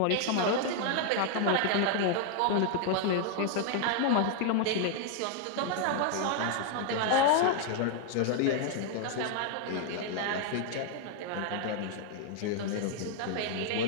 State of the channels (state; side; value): different; both; correlation 0.00